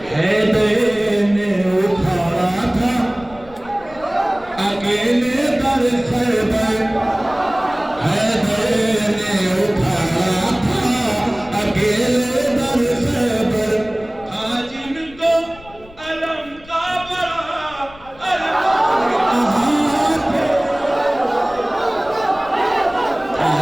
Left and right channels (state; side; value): noise; left; rumble, 22 dB below the sound